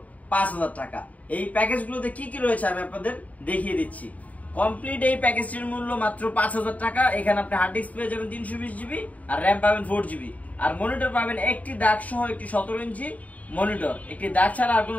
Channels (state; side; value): late; right; 0.071 ms